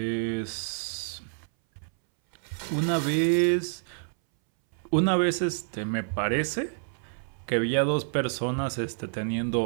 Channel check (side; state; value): left; silent; 59 dB below the other